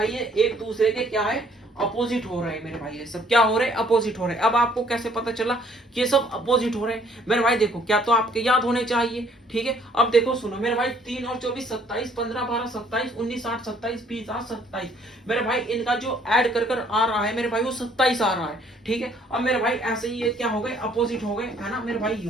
ये एक दूसरे के क्या है अपोजिट हो रहे हैं मेरे भाई, ये सब क्या हो रहे हैं अपोजिट हो रहे हैं। अब आपको कैसे पता चला कि ये सब अपोजिट हो रहे हैं मेरे भाई, देखो क्या तो आपके याद होने चाहिए। ठीक है, अब देखो सुनो मेरे भाई 3 और 24 27, 15 12 27, 19 8 27, 20 8 27। मेरे भाई इनका जो ऐड कर आ रहा है मेरे भाई वो 27 आ रहा है। ठीक है, अब मेरे भाई ऐसे ही ये क्या हो गए अपोजिट हो गए है ना मेरे भाई, ये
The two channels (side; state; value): both; normal; correlation 0.62